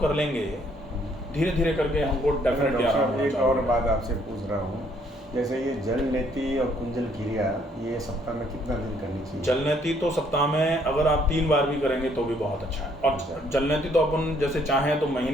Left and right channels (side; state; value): both; normal; correlation 0.66